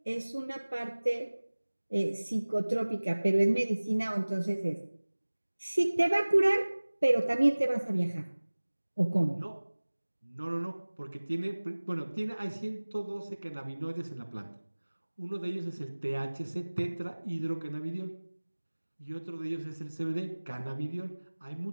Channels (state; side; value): inverted; both; correlation -1.00